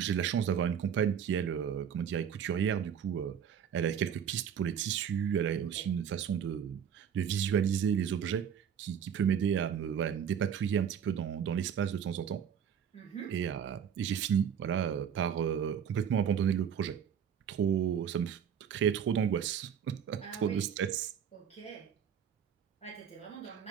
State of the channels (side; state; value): left; quieter; 8.2 dB